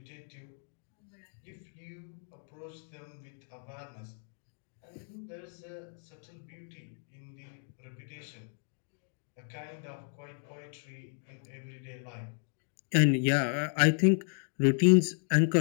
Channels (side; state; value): right; silent; 55 dB below the other